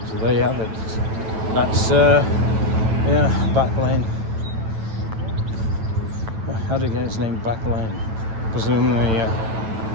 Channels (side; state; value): left; late; 9.1 ms